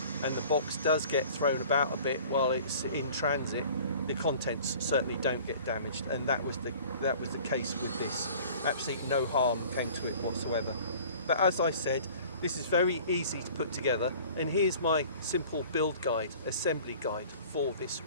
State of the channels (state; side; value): inverted; both; correlation -0.47